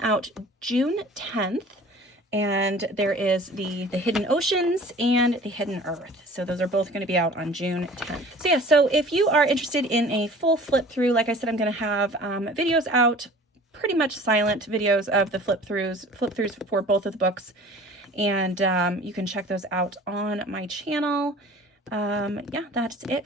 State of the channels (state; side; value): normal; both; correlation 0.46